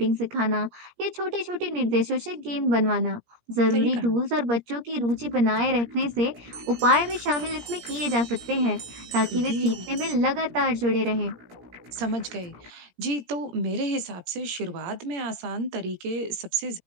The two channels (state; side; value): late; left; 17 ms